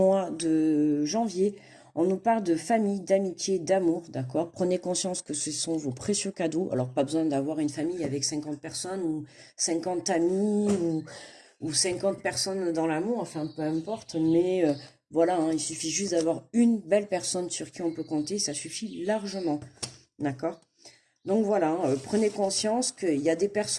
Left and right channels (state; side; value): identical; both; correlation 1.00